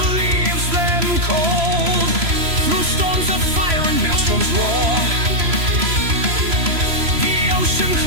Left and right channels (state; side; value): late; left; 3.0 ms